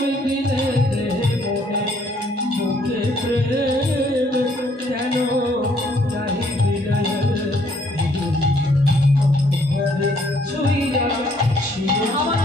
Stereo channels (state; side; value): normal; both; correlation 0.65